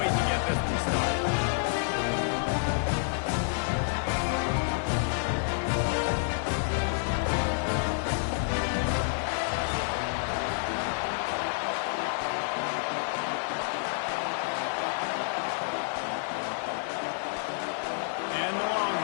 wait to get this one started.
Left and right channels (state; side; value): silent; right; 58 dB below the other